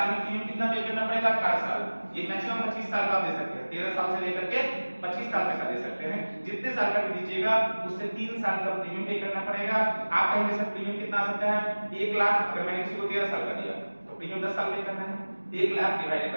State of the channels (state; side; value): inverted; both; correlation -1.00